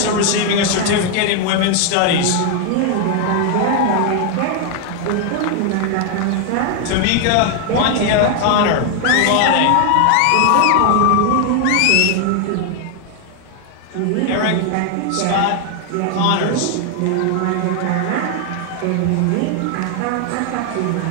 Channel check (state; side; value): different; both; correlation 0.00